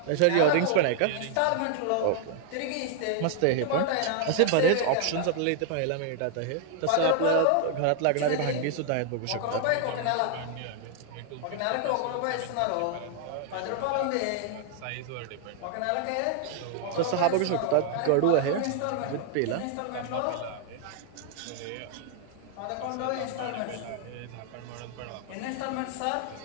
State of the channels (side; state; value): both; different; correlation 0.00